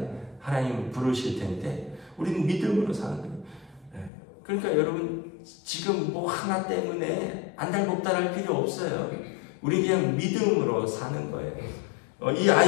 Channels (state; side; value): drops out; right; at 4.1 s